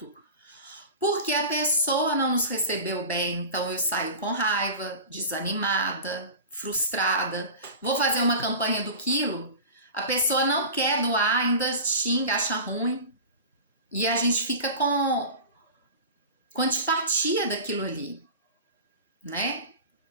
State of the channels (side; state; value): both; inverted; correlation -0.32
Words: porque a pessoa não nos recebeu bem, então eu saio com raiva, desanimada, frustrada. Vou fazer uma campanha do quilo, a pessoa não quer doar, ainda xinga, acha ruim. E a gente fica com antipatia daquilo ali, né?